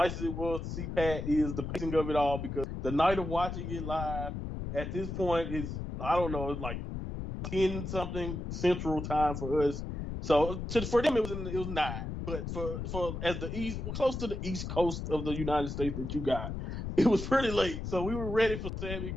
as it was to see Pat, is the pacing of it all, because the night of watching it live at this point is, I don't know, it's like 10 something Central Time for us. So for them it was 9, but for as the east, close to the East Coast of the United States that you got, it was pretty late. So we were ready for Sammy,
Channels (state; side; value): noise; left; rumble, 5 dB below the sound